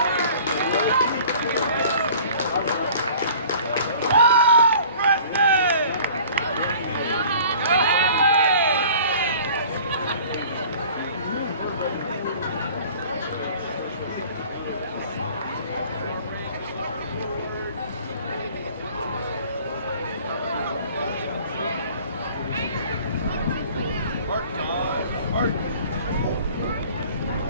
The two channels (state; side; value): inverted; both; correlation -0.48